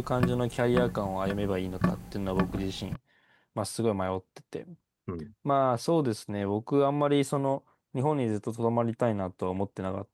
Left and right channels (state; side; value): identical; both; correlation 1.00